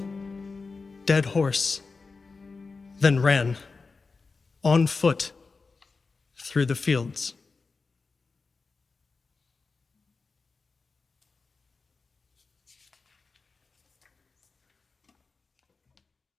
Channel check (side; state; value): right; quieter; 4.3 dB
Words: dead horse, then ran on foot through the fields.